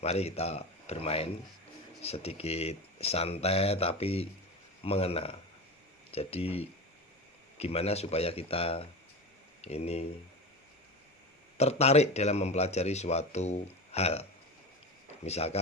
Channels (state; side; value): normal; both; correlation 0.26